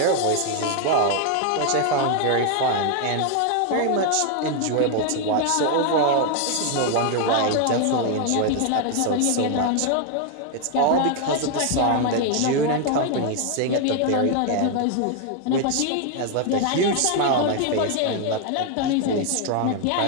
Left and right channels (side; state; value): both; different; correlation 0.01